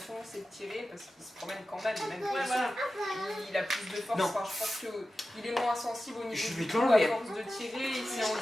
c'est de tirer parce qu'il se promène quand même, il a plus de force. Enfin, je pense qu'il est moins sensible au niveau du coup, à force de tirer, il s'est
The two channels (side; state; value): both; normal; correlation 0.94